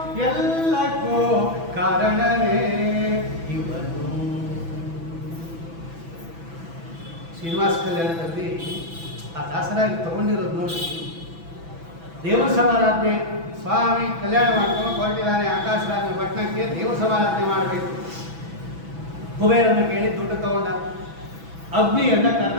ಎಲ್ಲಕ್ಕೂ ಕಾರಣನೇ ಇವನು. ಶ್ರೀನಿವಾಸ ಕಲ್ಯಾಣದಲ್ಲಿ ಆ ದಾಸರಾಗಿ ತಗೊಂಡಿರೋದು ನೋಡಿ. ದೇವರ ಸಮಾರಾಧನೆ, ಸ್ವಾಮಿ ಕಲ್ಯಾಣ ಮಾಡ್ಕೊಂಡು ಹೊರಟಿದ್ದಾನೆ ಆಕಾಶರಾಜನ ಪಟ್ಟಣಕ್ಕೆ, ದೇವರ ಸಮಾರಾಧನೆ ಮಾಡಬೇಕು. ಕುಬೇರನ್ನ ಕೇಳಿ ದುಡ್ಡು ತಗೊಂಡ. ಅಗ್ನಿಯನ್ನ ಕರೆದ.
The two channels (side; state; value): left; late; 6.0 ms